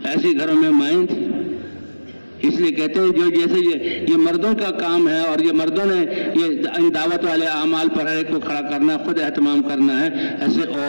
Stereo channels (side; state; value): both; inverted; correlation -1.00